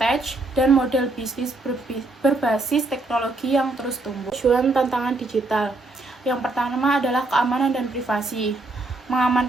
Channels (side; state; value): left; quieter; 3.0 dB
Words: dan model bisnis berbasis teknologi yang terus tumbuh. Tujuan tantangan digital. Yang pertama adalah keamanan dan privasi.